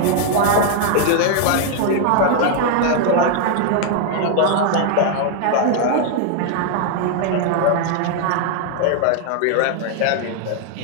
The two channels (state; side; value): different; both; correlation 0.00